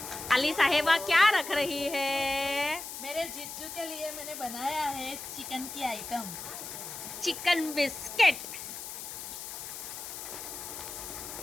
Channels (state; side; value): noise; left; hiss, 9 dB below the sound